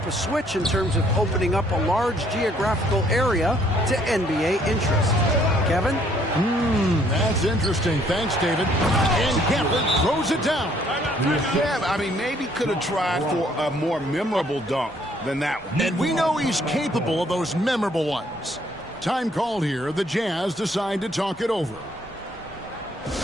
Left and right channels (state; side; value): normal; both; correlation 0.64